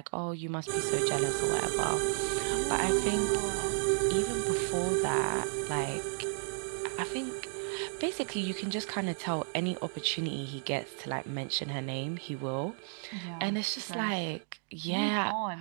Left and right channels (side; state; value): left; silent; 56 dB below the other